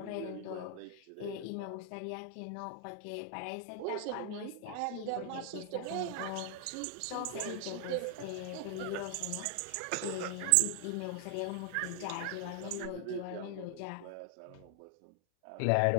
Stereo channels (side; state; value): both; different; correlation 0.00